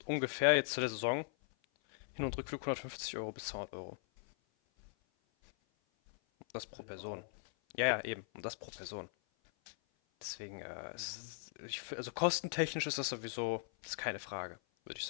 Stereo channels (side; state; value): right; silent; 51 dB below the other